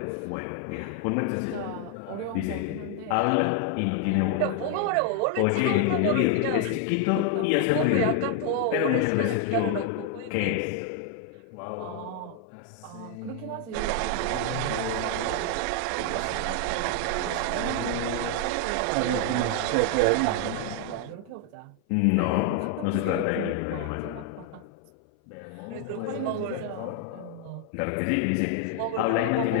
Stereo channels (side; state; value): both; different; correlation 0.00